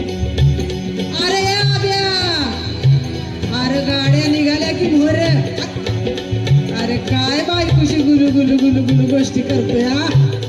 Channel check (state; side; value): identical; both; correlation 1.00